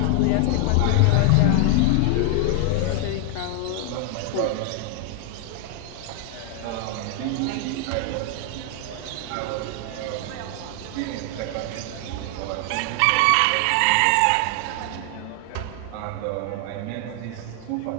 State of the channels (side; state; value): both; different; correlation 0.00